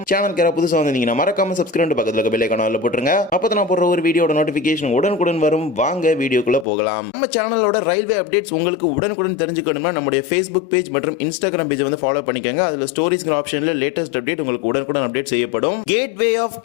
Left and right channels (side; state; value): right; drops out; at 6.7 s